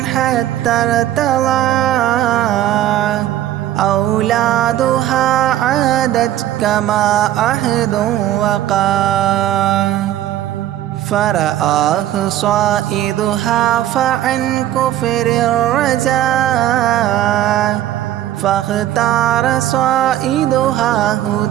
حتى ارتضى أولادها عادت كما عهد وقع فرآه صائدها فعن كفر الرجاء فاختار صائدها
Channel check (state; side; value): quieter; left; 12.8 dB